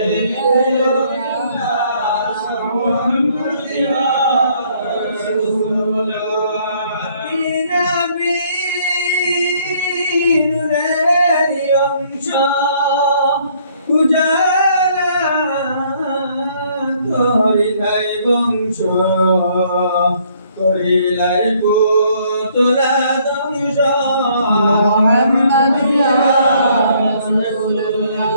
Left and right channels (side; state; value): both; inverted; correlation -0.64